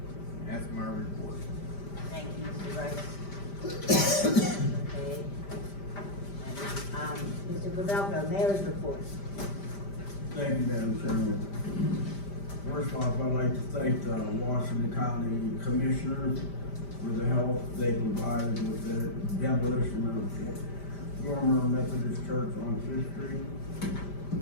That's my report. Thank you, Mr. Brice. Okay. Mr. Pavelko, mayor's report. Thank you, Madam Chairman. First off, I'd like to thank the Washington County Commissioners for the help they provided with the demolition of former Methodist Church on Fifth Street.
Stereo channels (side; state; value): right; late; 5.1 ms